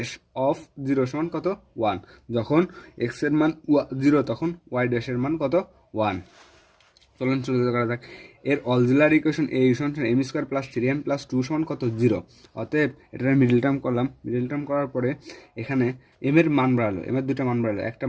অফ জিরো সমান কত ওয়ান, যখন এক্স এর মান জিরো তখন ওয়াই ড্যাশের মান কত ওয়ান। চলুন শুরু করা যাক। এর অক্সিলারি ইকুয়েশন এ সমান m square plus three m plus two সমান কত জিরো, অতএব এটার মিডল টার্ম করলাম, মিডল টার্ম করার পরে এখানে এম এর মান বাড়ালো, এম এর দুটো মান বাড়ালো, একটা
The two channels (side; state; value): both; identical; correlation 1.00